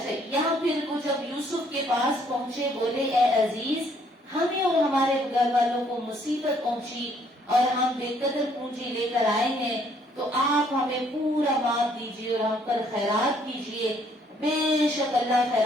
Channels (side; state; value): both; normal; correlation 0.65